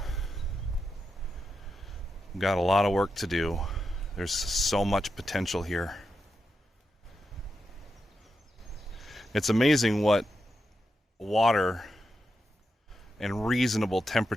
We've got a lot of work to do. There's so much potential here. It's amazing what water and reasonable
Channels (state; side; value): normal; both; correlation 0.86